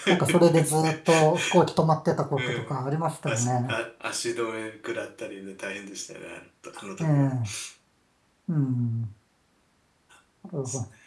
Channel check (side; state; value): both; identical; correlation 1.00